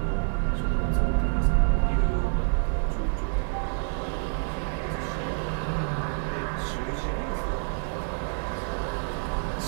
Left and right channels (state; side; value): silent; left; 60 dB below the other